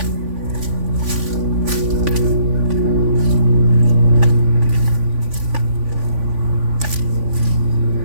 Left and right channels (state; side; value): late; left; 3.5 ms